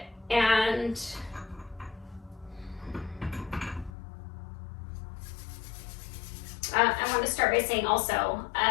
And I want to start by saying also,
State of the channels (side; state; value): right; drops out; at 3.9 s